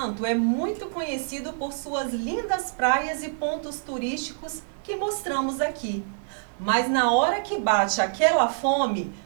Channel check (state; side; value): silent; left; digital silence